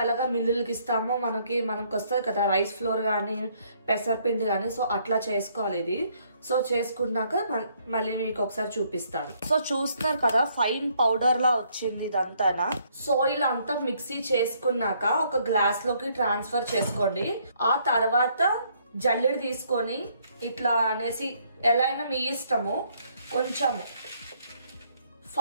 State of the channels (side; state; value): both; inverted; correlation -0.68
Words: ఎలాగా మిల్లులకి ఇస్తామో మనకి వస్తుంది కదా రైస్ ఫ్లోర్ కానీ పెసరపిండి కానీ. సో అట్లా చేసుకోవాలి ఇది. సో చేసుకున్నాక మళ్ళీ మీకు ఒకసారి చూపిస్తాను. సో చూస్తున్నారు కదా ఫైన్ పౌడర్ లా వచ్చింది ఇదంతా. సో ఇలా అంతా మిక్సీ చేసుకున్నాక ఒక గ్లాస్ లోకి ట్రాన్స్ఫర్ చేసుకోండి. ఆ తర్వాత జల్లెడ తీసుకొని ఇట్లా అనేసి ఎలా అయినా మీ ఇష్టము కొంచెము